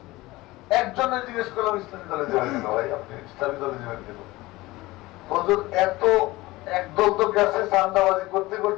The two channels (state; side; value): quieter; right; 19.7 dB